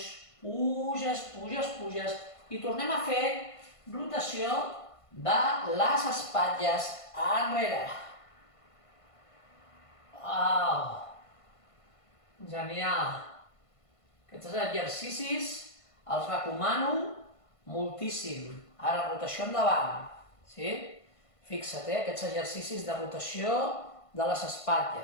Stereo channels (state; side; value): late; right; 1.5 ms